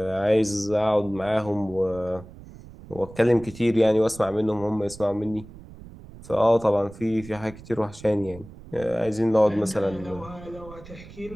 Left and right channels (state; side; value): noise; right; rumble, 17 dB below the sound